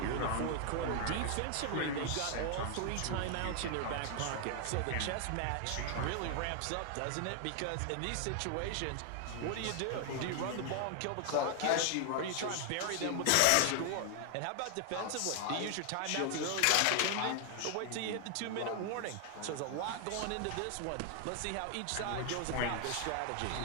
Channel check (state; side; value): different; both; correlation 0.00